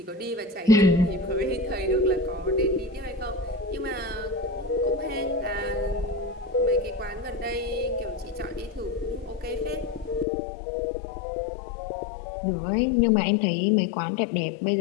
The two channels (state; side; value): drops out; right; at 10.2 s